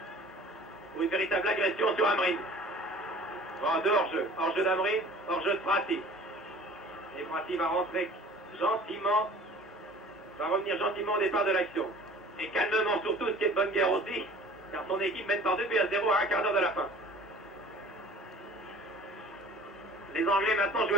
Pour une véritable agression sur Amrin. Bon, de hors-jeu. Hors-jeu d'Amrin, hors-jeu de Prati. Et Prati va rentrer gentiment, va revenir gentiment au départ de l'action. Et calmement surtout, ce qui est de bonne guerre aussi, car son équipe mène par 2-0 à un quart d'heure de la fin. Les Anglais maintenant jouent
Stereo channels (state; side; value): normal; both; correlation 0.46